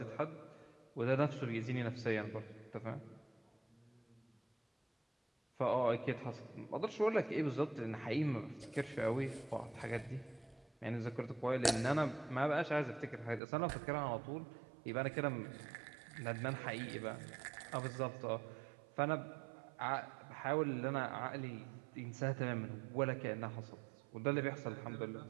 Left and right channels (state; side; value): drops out; left; at 13.4 s